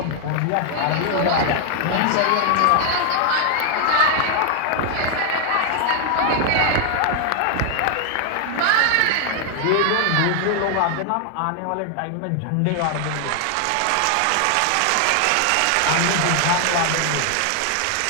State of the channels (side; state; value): both; different; correlation 0.00